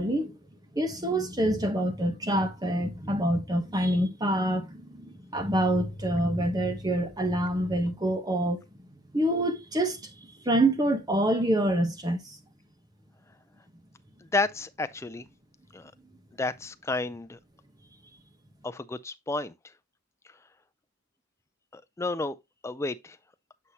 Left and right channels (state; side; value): normal; both; correlation 0.65